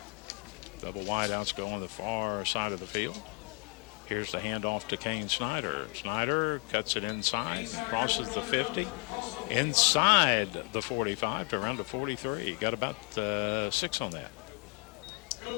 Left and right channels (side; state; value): right; quieter; 36.8 dB